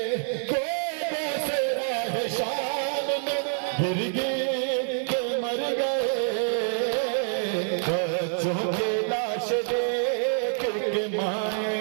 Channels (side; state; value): left; silent; digital silence